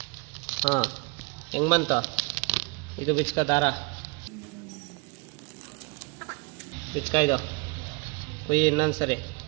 ಹಾಂ ಹೆಂಗೆ ಬಂತು ಇದು ಬಿಚ್ಕೋ ದಾರ ಬಿಚ್ಕ ಇದು ಕುಯ್ಯಿ ಇನ್ನೊಂದು ಸರಿ.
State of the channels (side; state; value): left; quieter; 29.5 dB